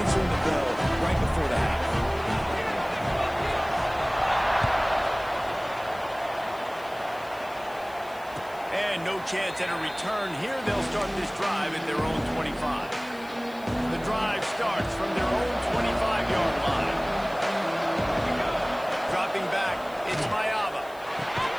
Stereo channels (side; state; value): left; noise; hiss, 23 dB below the sound